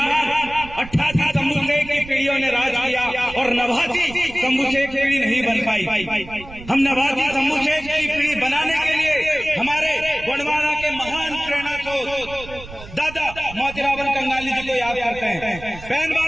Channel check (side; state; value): right; noise; rumble, 16 dB below the sound